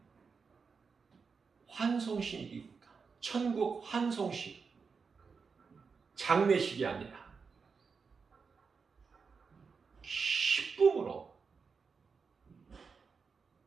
환송식이니까. 천국 환송식. 장례식이 아니라 기쁨으로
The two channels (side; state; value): left; quieter; 5.3 dB